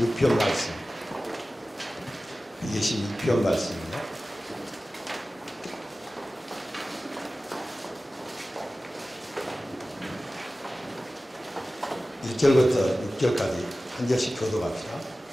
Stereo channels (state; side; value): normal; both; correlation 0.96